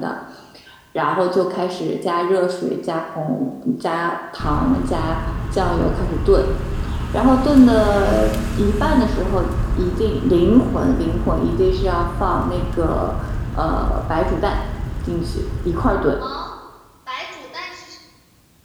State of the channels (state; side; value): identical; both; correlation 1.00